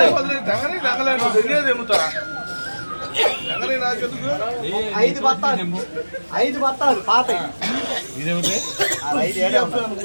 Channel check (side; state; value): both; inverted; correlation -1.00